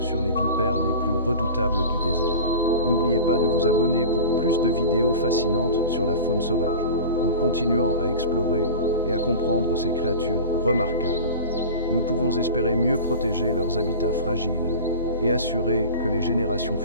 les vipères les plus redoutables du désert. N'oubliez pas de vous abonner pour plus de vidéos fascinantes sur la faune sauvage, en continuant à explorer et à comprendre ces créatures remarquables. nous pouvons espérer mieux protéger leurs habitats fragiles et assurer que les générations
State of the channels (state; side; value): inverted; both; correlation -0.34